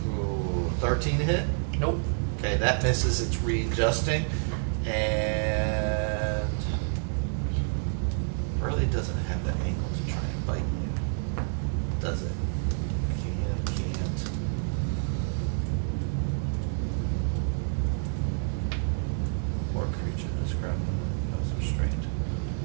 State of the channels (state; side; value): silent; left; 59 dB below the other